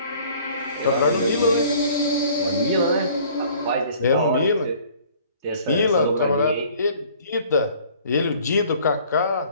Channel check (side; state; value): both; inverted; correlation -0.54